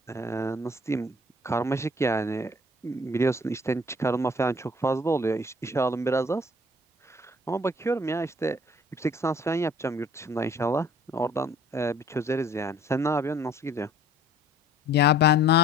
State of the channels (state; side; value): normal; both; correlation 0.54